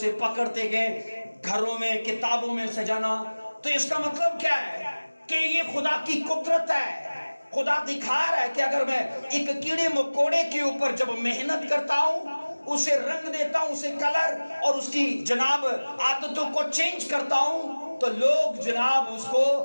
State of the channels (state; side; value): inverted; both; correlation -1.00